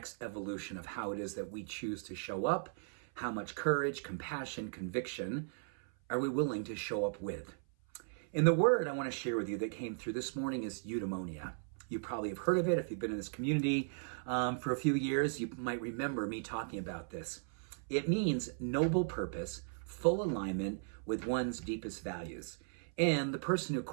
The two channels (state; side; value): silent; left; 53 dB below the other